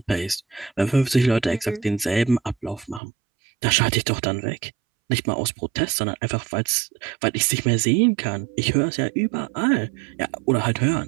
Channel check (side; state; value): left; drops out; at 3.0 s